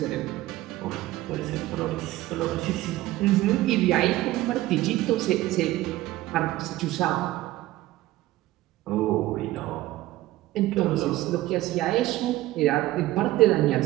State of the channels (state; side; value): quieter; left; 16.4 dB